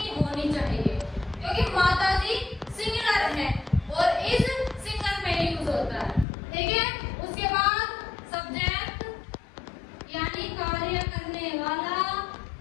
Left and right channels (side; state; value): right; drops out; at 6.2 s